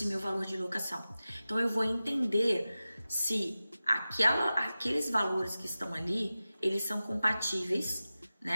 meu valor de locação. Então, eu vou entender se aqueles valores que estão ali, eles são compatíveis,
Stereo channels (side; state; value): both; inverted; correlation -0.95